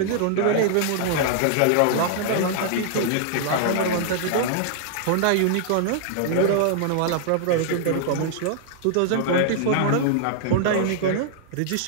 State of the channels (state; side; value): different; both; correlation -0.01